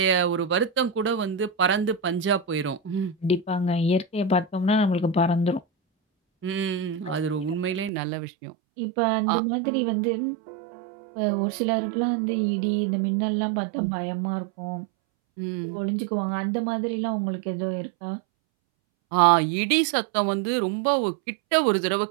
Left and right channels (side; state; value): left; drops out; at 7.9 s